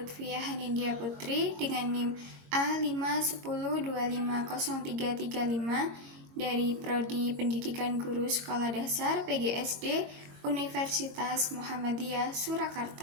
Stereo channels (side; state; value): left; late; 21 ms